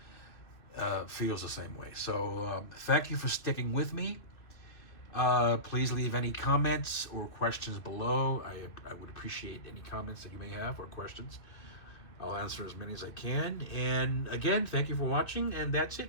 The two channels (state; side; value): late; right; 2.7 ms